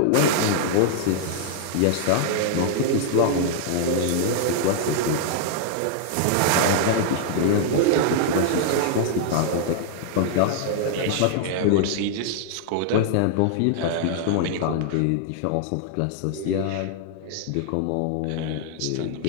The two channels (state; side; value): different; both; correlation -0.01